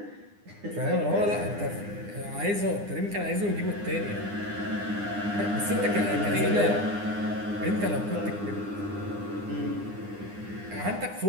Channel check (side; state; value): left; late; 9.8 ms